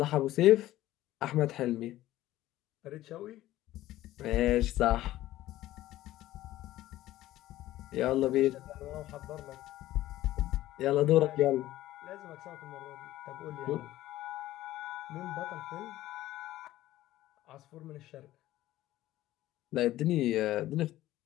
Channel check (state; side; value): quieter; right; 15.1 dB